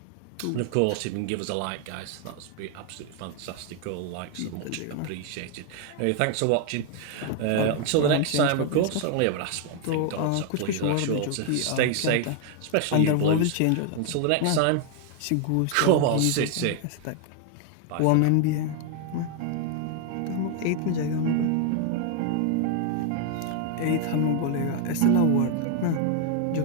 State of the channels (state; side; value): different; both; correlation 0.00